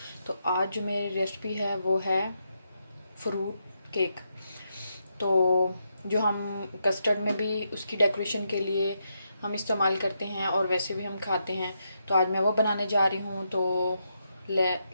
तो आज जो मेरी रेसिपी है वो है फ्रूट केक। तो जो हम कस्टर्ड में भी उसकी डेकोरेशन के लिए हम इस्तेमाल करते हैं और वैसे भी हम खाते हैं, तो आज मैं वो बनाने जा रही हूँ। तो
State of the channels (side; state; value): both; inverted; correlation -0.81